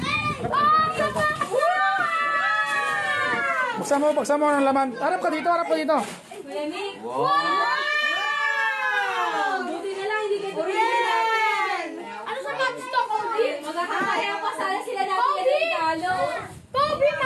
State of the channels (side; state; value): both; identical; correlation 1.00